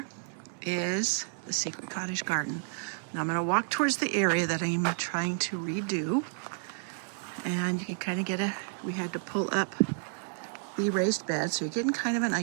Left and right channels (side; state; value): left; silent; digital silence